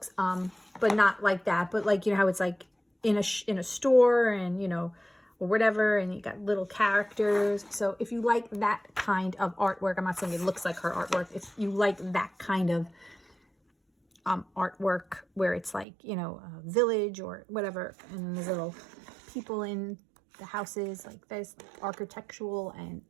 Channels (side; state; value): left; drops out; at 15.9 s